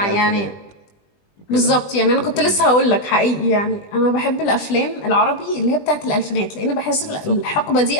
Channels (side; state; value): right; late; 20 ms